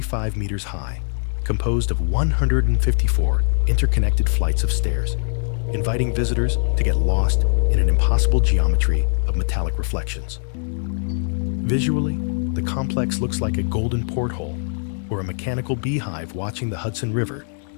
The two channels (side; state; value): right; silent; digital silence